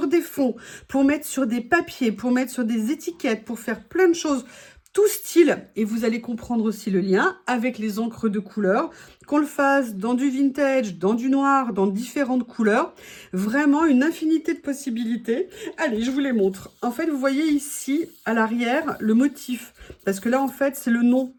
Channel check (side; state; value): both; identical; correlation 1.00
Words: des fonds, pour mettre sur des papiers, pour mettre sur des étiquettes, pour faire plein de choses, tout style, et vous allez comprendre aussi le lien avec les encres de couleur, qu'on le fasse dans du vintage, dans du noir, dans différentes couleurs, vraiment une infinité de possibilités. Allez, je vous les montre. En fait, vous voyez ici, à l'arrière, le motif, parce que là, en fait, c'est le nom